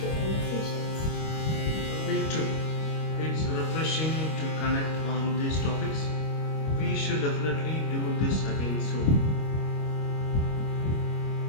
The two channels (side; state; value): right; late; 25 ms